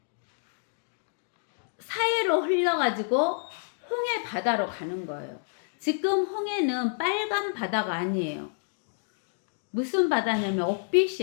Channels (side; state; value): right; silent; digital silence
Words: 사해로 흘러가지고 홍해 바다로 가는 거예요. 지금 홍해는 빨간 바다가 아니에요. 무슨 바다냐면